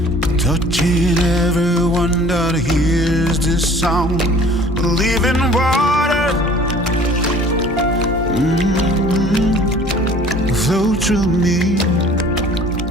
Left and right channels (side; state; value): both; normal; correlation 0.50